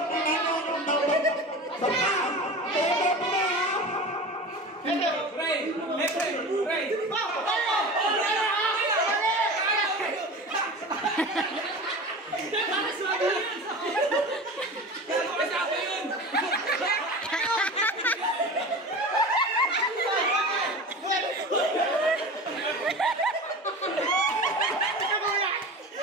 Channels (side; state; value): both; normal; correlation 0.32